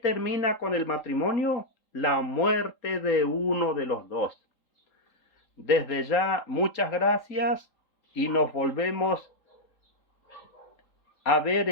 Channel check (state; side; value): late; right; 3.8 ms